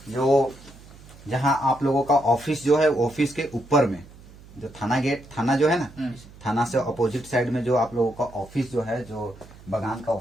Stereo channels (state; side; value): noise; right; hum, 21 dB below the sound